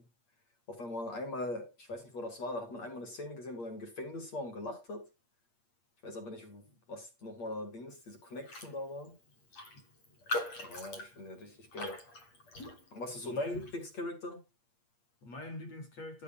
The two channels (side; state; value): right; late; 8.5 ms